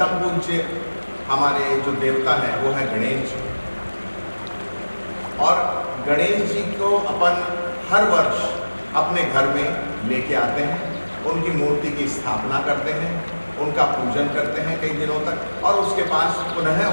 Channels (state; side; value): inverted; both; correlation -1.00